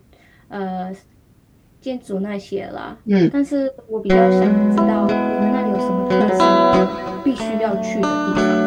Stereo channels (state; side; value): identical; both; correlation 1.00